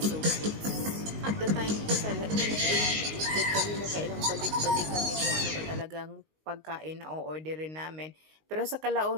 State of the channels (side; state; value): left; late; 19 ms